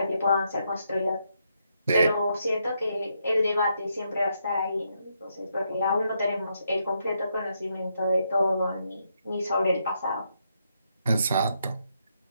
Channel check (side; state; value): both; inverted; correlation -0.79